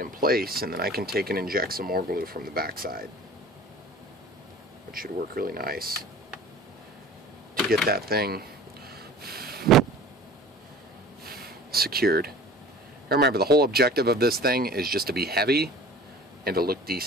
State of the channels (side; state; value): both; normal; correlation 0.43